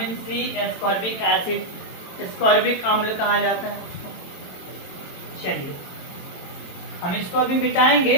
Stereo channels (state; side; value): late; right; 23 ms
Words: C ascorbic acid, ascorbic अम्ल कहा जाता है उसको। चलिए हम इसको अभी मिटाएंगे,